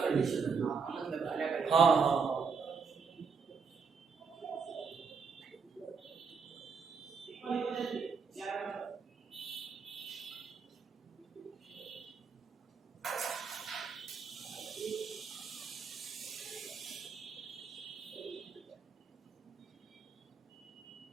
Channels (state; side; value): quieter; left; 5.5 dB